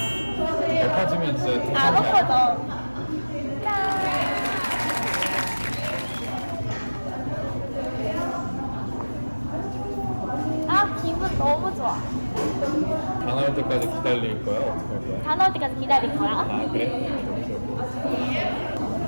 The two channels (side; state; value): both; inverted; correlation -1.00